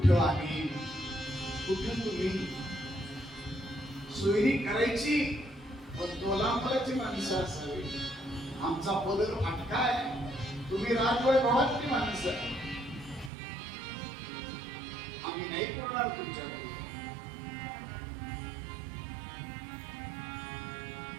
आम्ही कुठं तुम्ही सोयरी करायची पण तोलांपराची माणसं असावी. आमचा पदर फाटका आहे, तुम्ही राजवैभवातली माणसं, आम्ही नाही करणार तुमच्यावर.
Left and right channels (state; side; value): drops out; left; at 13.3 s